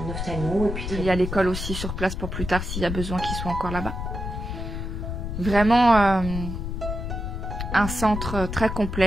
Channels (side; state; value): left; noise; rumble, 5 dB below the sound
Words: ophtalmo. Et puis il y a l'école aussi sur place pour plus tard s'il y a besoin qu'ils soient encore là-bas. Vraiment un centre très